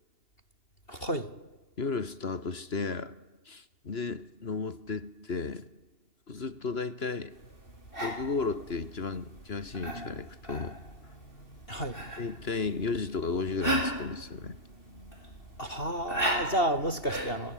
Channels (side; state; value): right; late; 2.9 ms